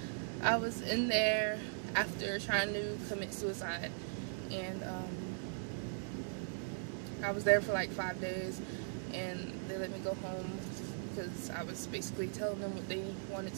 I was in there after trying to commit suicide, and I was there for like 5 days, and they let me go home because I was basically telling them what they wanted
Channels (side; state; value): left; silent; digital silence